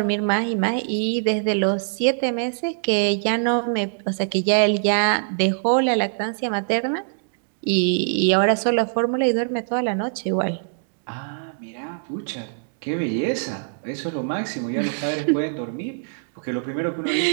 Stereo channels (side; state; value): left; silent; digital silence